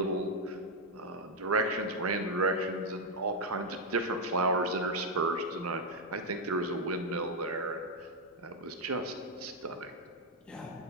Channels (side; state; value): both; normal; correlation 0.00